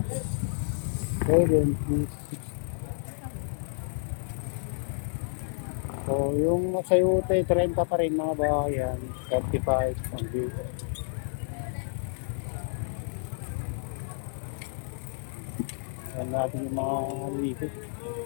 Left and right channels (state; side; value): silent; right; 58 dB below the other